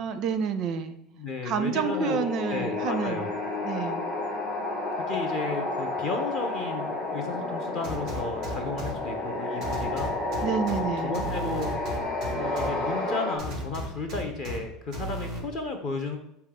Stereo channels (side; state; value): both; normal; correlation 0.38